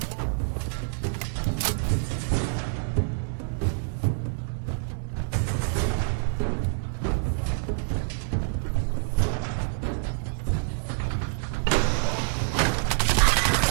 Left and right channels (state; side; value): silent; left; digital silence